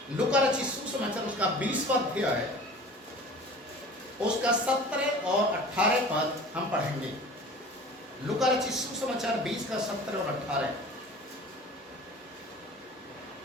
लूका रचित सुसमाचार उसका 20वां अध्याय उसका 17 और 18 पद हम पढ़ेंगे। लूका रचित सुसमाचार 20 का 17 और 18।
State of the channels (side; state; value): both; normal; correlation 0.42